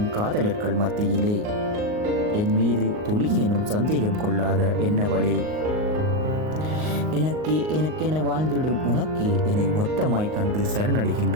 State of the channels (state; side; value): late; left; 39 ms